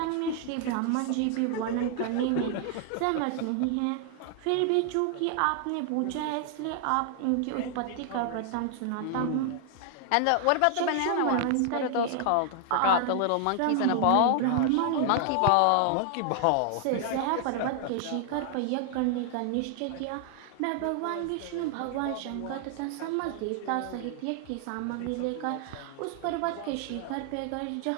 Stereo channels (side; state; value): both; different; correlation 0.00